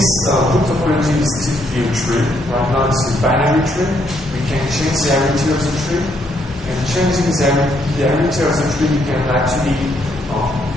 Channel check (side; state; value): both; normal; correlation 0.73